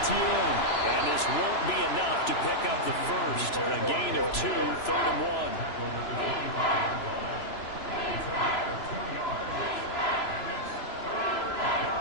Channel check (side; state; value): right; late; 3.0 ms